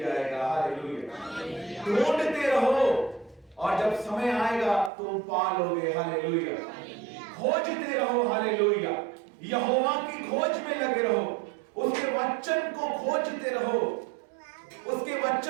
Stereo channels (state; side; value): drops out; left; at 4.9 s